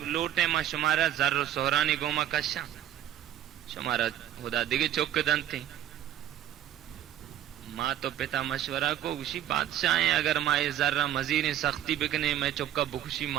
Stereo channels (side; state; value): left; quieter; 11.6 dB